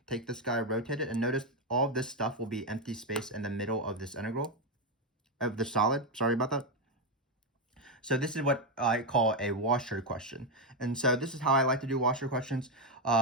take this guy, rotate it, and notice all of this stuff will be empty space in the middle of this integral, of the solid. Sorry about that. So this is what I call a washer question. And so this is how I like to do washer questions.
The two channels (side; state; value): both; normal; correlation 0.06